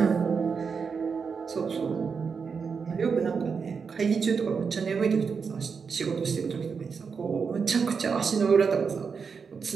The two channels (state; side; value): quieter; left; 5.7 dB